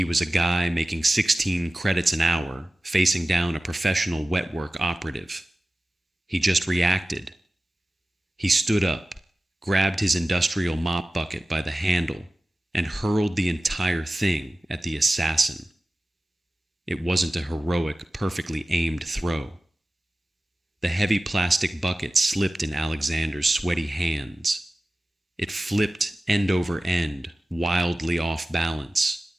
was a guy making 16 credits an hour, facing down a professional wetwork operative. He just reacted. He stood up, grabbed his industrial mop bucket by the handle, and hurled the entire thing at the assassin. It wasn't a heroic, perfectly aimed throw. The heavy plastic bucket slipped in Alexander's sweaty hands. It flipped end over end, wildly off balance,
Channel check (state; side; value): normal; both; correlation 0.96